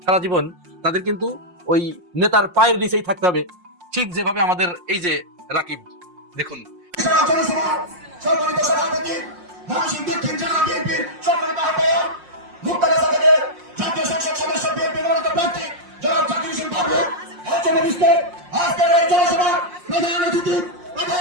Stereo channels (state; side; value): late; left; 5.6 ms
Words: সারা জীবন? তাদের কিন্তু ওই নেতার পায়ের নিচেই থাকতে হবে, ঠিক যেভাবে আমাদের এই যে রাকিব, দেখুন